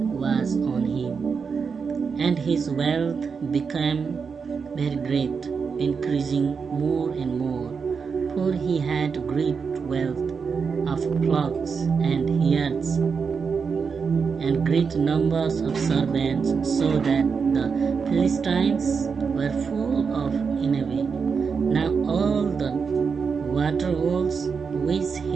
on him, and his wealth became very great, increasing more and more, for he had great wealth of flocks and herds, and great numbers of servants, so that the Philistines were full of envy. Now all the water holes which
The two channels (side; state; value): left; quieter; 5.7 dB